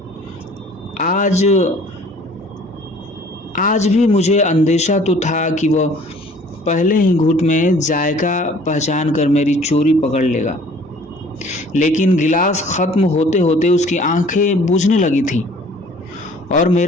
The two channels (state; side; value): normal; both; correlation 0.52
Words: आज भी मुझे अंदेशा तो था कि वह पहले ही घूंट में जायका पहचान कर मेरी चोरी पकड़ लेगा, लेकिन गिलास खत्म होते होते उसकी आंखें बुझने लगी थीं और